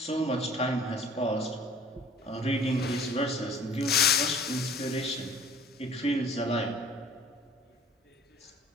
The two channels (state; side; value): normal; both; correlation 0.50